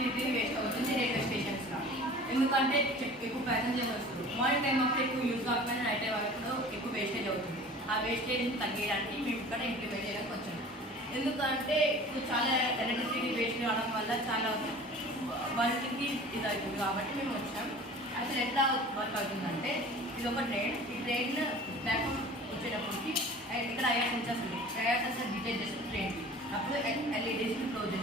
వేస్ట్ అవుతుంది రైల్వే స్టేషన్స్లో. ఎందుకంటే ఎక్కువ ప్యాసింజర్స్ వస్తారు. మార్నింగ్ టైం అప్పుడు ఎక్కువ యూజ్ కాకపోయినా నైట్ టైం అప్పుడు ఎక్కువ వేస్టేజ్ అవుతుంది. ఆ వేస్టేజ్ని తగ్గించడానికి మేము ఇక్కడ ఇంప్లిమెంట్ చేయడానికి వచ్చాము. ఎందుకంటే ఇప్పుడు చాలా ఎలక్ట్రిసిటీ వేస్ట్ కావడం వల్ల చాలా వర్క్కి ఇది అవుతుంది కాబట్టి మేము వచ్చాం. అసలు ఎట్లా వర్క్ అవుతుందంటే ఇది ఒక ట్రైన్. ఈ ట్రైన్ ప్లాట్ఫామ్ వచ్చేటప్పటికి ఇక్కడ ఐఆర్ సెన్సర్స్ ఉంది. ఐఆర్ సెన్సర్ డిటెక్ట్ చేస్తుంది ట్రైన్కి. అప్పుడు ఎల్ఈడీస్ని క్లోజ్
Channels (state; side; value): normal; both; correlation 0.42